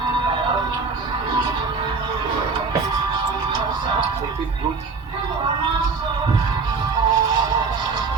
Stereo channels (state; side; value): quieter; left; 4.4 dB